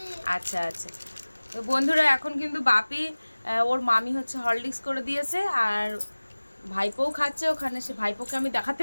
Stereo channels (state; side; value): inverted; both; correlation -1.00